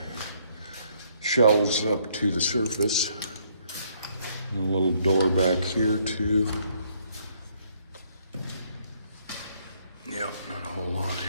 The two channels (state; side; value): inverted; both; correlation -0.68